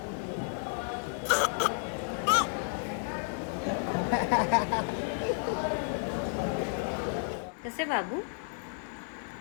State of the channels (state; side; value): silent; right; 56 dB below the other